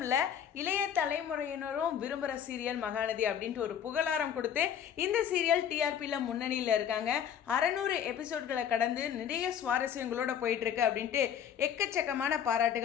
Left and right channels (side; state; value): right; quieter; 9.0 dB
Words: இல்லை, இளைய தலைமுறையினரும் விரும்புகிற சீரியல் மகாநதி அப்படின்ட்டு ஒரு புகழாரம் கொடுத்து இந்த சீரியல் டிஆர்பியில் முன்னணியில் இருக்காங்க. 600 எபிசோட்களை கடந்து நிறைய சுவாரஸ்யங்களோட போயிட்டுருக்கு அப்படின்ட்டு எக்கச்சக்கமான